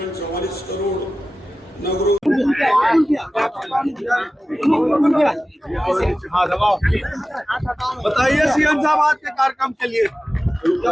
44 करोड़, नगरों बताइए सीएम साहब आज के कार्यक्रम के लिए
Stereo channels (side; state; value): both; normal; correlation 0.95